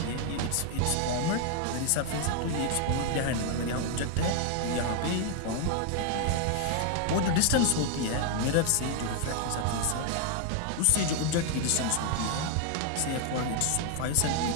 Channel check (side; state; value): both; different; correlation 0.00